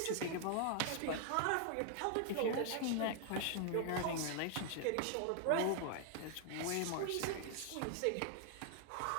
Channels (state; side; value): different; both; correlation 0.00